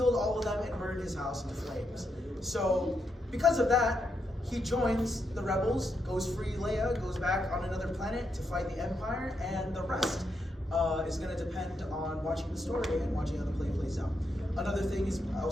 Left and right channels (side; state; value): both; normal; correlation 0.82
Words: all of them and burned his house into flames. So because of that, he joins the rebels, goes free Leia, goes back on another planet to fight the Empire, and the rest is going to depend on watching the story and watching how the play plays out. Another thing is